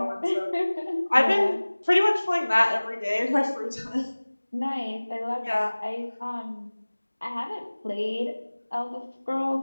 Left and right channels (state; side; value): inverted; both; correlation -1.00